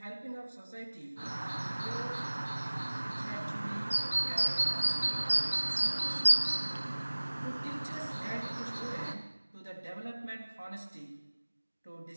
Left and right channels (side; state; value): both; inverted; correlation -1.00